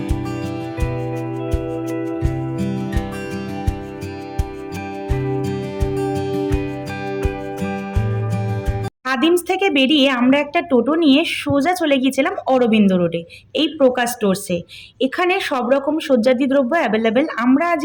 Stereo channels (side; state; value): both; identical; correlation 1.00